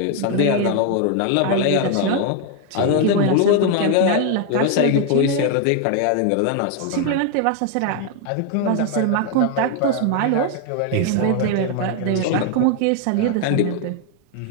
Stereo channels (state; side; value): different; both; correlation 0.00